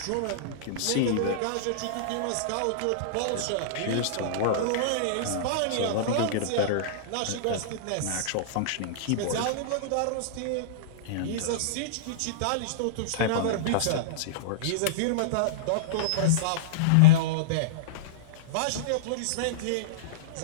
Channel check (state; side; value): different; both; correlation -0.03